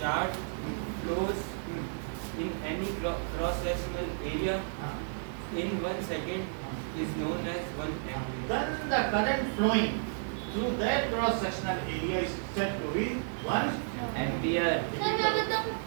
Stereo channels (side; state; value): left; silent; digital silence